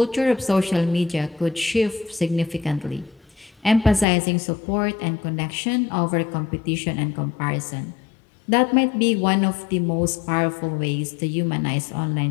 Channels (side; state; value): right; drops out; at 4.0 s